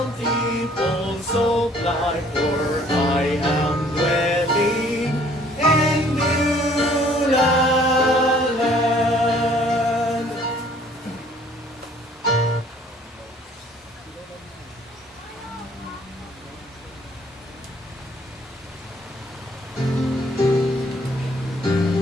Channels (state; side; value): normal; both; correlation 0.58